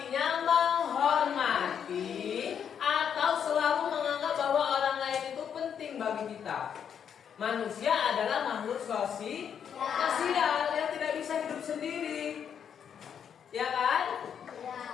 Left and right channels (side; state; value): right; quieter; 8.0 dB